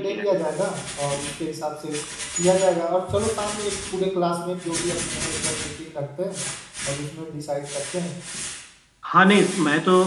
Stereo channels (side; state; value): both; identical; correlation 1.00